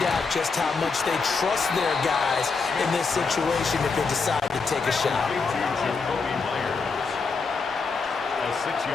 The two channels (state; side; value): quieter; right; 4.7 dB